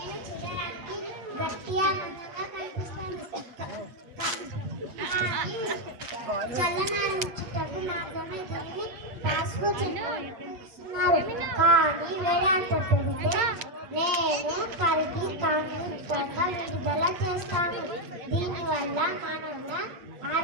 చూడడానికి గట్టిగా అందంగా కనిపిస్తాను, చల్లనారించుటకు నాతోనే దీన్ని పాస్కు చెప్తున్నారు. కానీ వేడంత పెడితే నేను కరిగి కాంతిక విడుదల చేస్తాను. దీనివల్ల మానవుల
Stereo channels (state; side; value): late; left; 8.5 ms